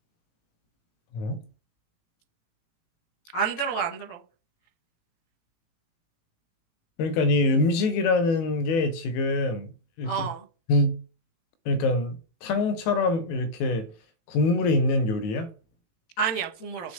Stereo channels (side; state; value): right; late; 18 ms